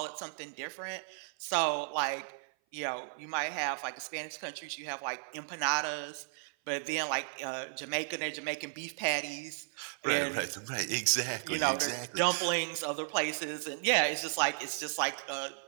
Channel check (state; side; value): silent; left; 55 dB below the other